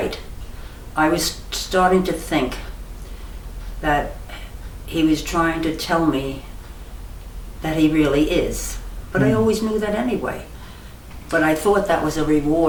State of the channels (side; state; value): both; identical; correlation 1.00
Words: I was starting to think that he was trying to tell me that he really is. But I always knew that anyway. But I thought that was a